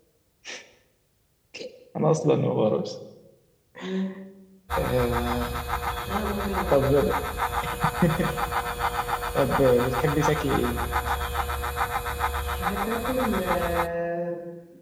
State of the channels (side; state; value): both; identical; correlation 1.00